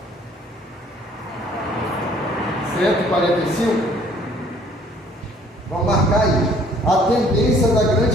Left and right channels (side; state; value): both; normal; correlation 0.58